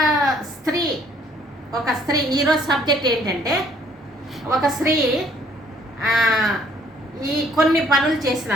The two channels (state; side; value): normal; both; correlation 0.63